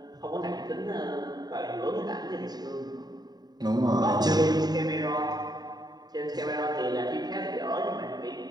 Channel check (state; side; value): late; left; 0.20 ms